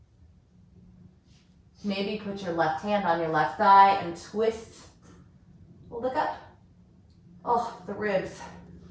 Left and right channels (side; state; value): both; identical; correlation 1.00